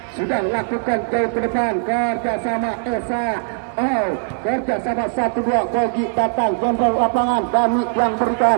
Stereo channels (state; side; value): silent; left; 56 dB below the other